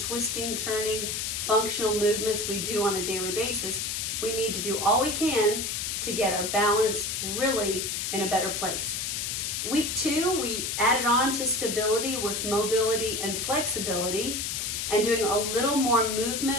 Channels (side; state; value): left; noise; hiss, 2 dB below the sound